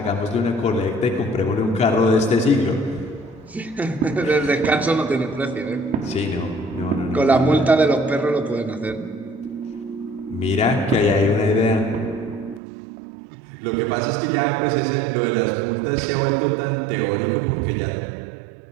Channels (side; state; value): left; drops out; at 12.6 s